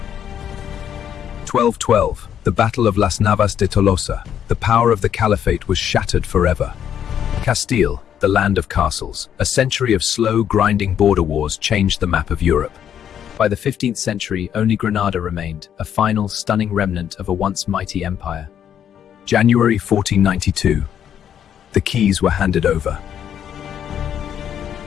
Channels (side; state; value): right; quieter; 9.3 dB